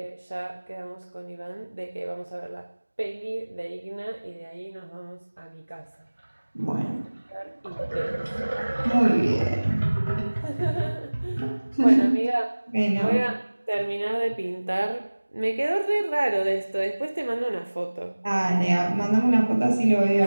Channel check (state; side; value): inverted; both; correlation -1.00